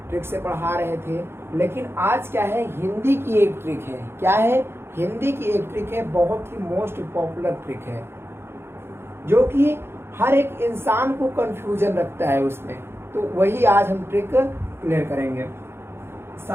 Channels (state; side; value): late; left; 0.12 ms